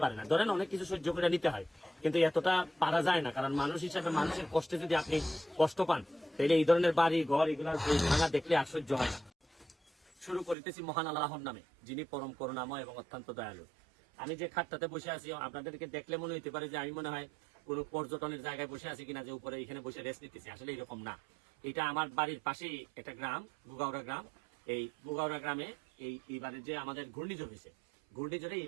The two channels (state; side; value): drops out; left; at 10.6 s